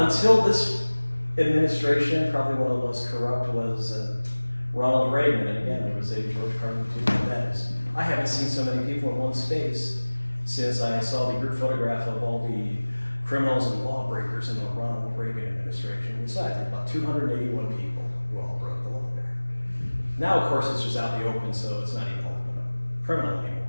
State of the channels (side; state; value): both; inverted; correlation -1.00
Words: this administration, probably one of the most corrupt was Ronald Reagan. And again, there was a George Carlin too about that. I haven't seen so many people in one space since I saw the group photograph of all the criminals and lawbreakers in the Ronald Reagan administration. Besides, there were about 281 people who all broke the law there. Now, of course, it's just out in the open, so it's not even criminal